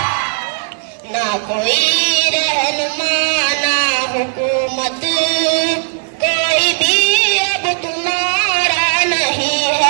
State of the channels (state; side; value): silent; left; digital silence